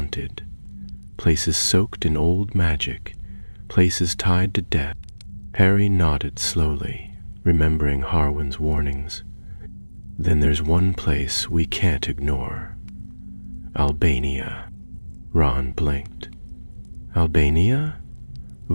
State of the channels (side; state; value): both; inverted; correlation -1.00